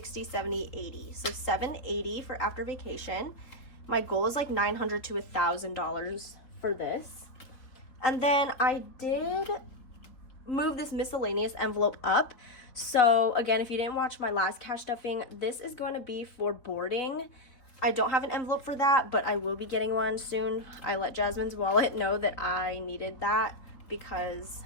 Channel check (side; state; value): right; late; 3.8 ms